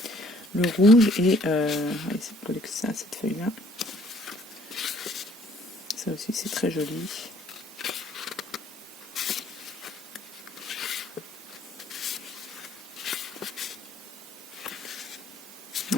le rouge et cette feuille là. Ça aussi c'est très joli.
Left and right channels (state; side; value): normal; both; correlation 0.61